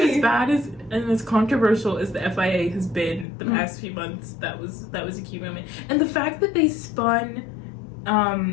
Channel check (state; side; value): drops out; right; at 3.2 s